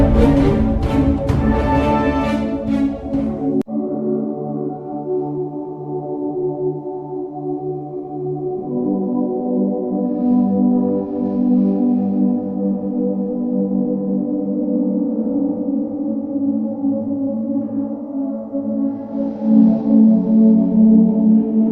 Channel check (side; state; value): both; identical; correlation 1.00